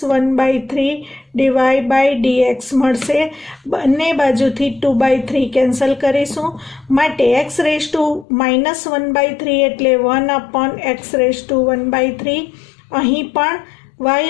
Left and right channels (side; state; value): right; drops out; at 8.2 s